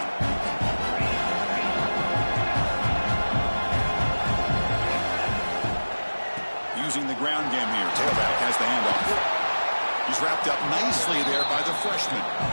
Using the ground game here. Tailback has the handoff. He's wrapped up nicely there by the freshman.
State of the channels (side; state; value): both; inverted; correlation -1.00